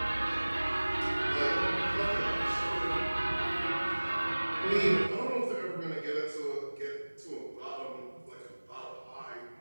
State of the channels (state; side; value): inverted; both; correlation -1.00